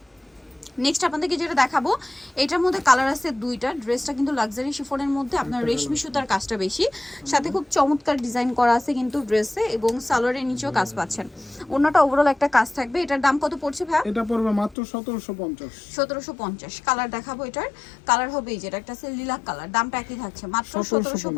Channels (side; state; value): right; drops out; at 14.8 s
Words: নেক্সট আপনাদেরকে যেটা দেখাবো এটার মধ্যে কালার আছে দুইটা। ড্রেসটা কিন্তু লাক্সারি শিফনের মধ্যে আপনার রেশমি সুতার কাজটা বেশি, সাথে খুব চমৎকার ডিজাইন করা আছে কিন্তু ড্রেসে, এবং সালোয়ারের নিচেও কাজ পাচ্ছেন। ওন্নাটা ওভারঅল একটা কাজ থাকবে। এটার দাম কত পড়ছে ভাই? এটা পড়বে মাত্র 1750। 1750। কালার দেখাবো। এটার কালার হবে এই যেটা একটা আছে লিলাক কালার। দামটা একই থাকছে মাত্র